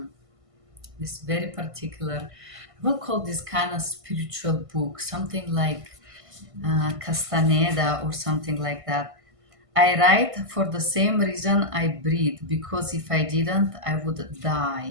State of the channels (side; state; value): left; late; 1.5 ms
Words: This very particular, I will call this kind of spiritual book, something like Castaneda or something like that. I write for the same reason I breathe, because if I didn't I would